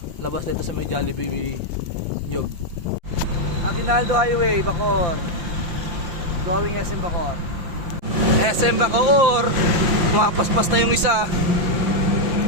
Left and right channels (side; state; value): left; late; 6.0 ms